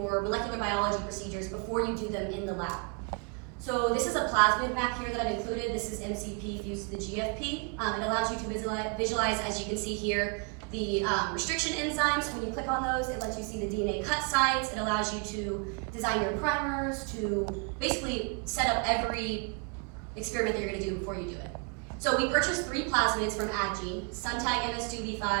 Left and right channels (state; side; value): quieter; left; 35.7 dB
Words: molecular biology procedures before you do them in the lab. So this is a plasmid map here that I've included. This is MCP fused to the GFP. It allows you to visualize, as you can see here, the restriction enzymes. When you click on those, it lets you see the DNA cut sites. It allows you to design your primers, to basically set up every experiment that you're going to do before you do it. So we purchased 3 plasmids from AdGene, Suntag MS2 V5,